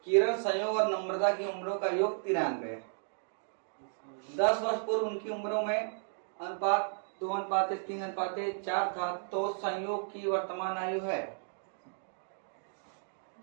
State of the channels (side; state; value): left; silent; digital silence